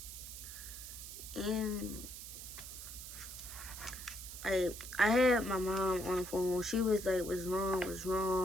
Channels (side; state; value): right; noise; hiss, 10 dB below the sound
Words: And I had my mom on the phone. She was like, what's